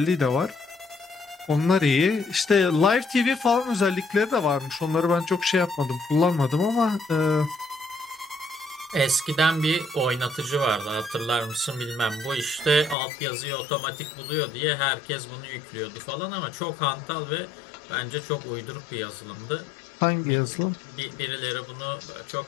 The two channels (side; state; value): right; drops out; at 13.0 s